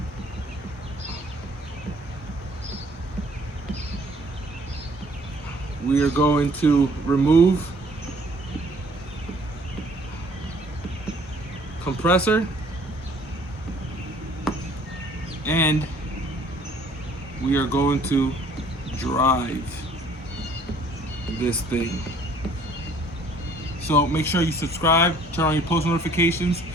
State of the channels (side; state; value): both; normal; correlation 0.57